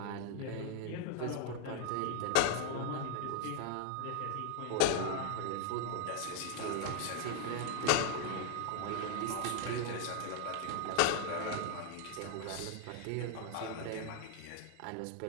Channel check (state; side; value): different; both; correlation 0.00